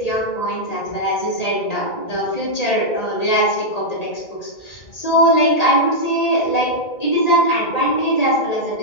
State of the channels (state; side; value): late; right; 1.8 ms